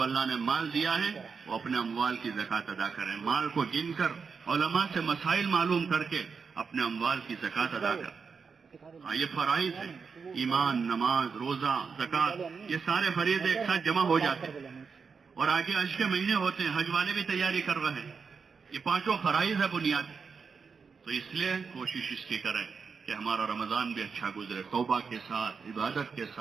اللہ نے مال دیا ہے وہ اپنے اموال کی زکوٰۃ ادا کریں، مال کو گن کر علماء سے مسائل معلوم کر کے اپنے اموال کی زکوٰۃ ادا کریں۔ ہاں، یہ فرائض ہیں، ایمان، نماز، روزہ، زکوٰۃ، یہ سارے فریضے ایک ساتھ جمع ہو جاتے ہیں، اور آگے حج کے مہینے ہوتے ہیں، حج والے بھی تیاری کر رہے ہیں۔ یہ پانچوں فرائض ہے بنیادی، تو اس لیے کوشش اس کی کریں کہ ہمارا رمضان بھی اچھا گزرے، توبہ کے ساتھ، عبادت کے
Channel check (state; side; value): quieter; left; 5.5 dB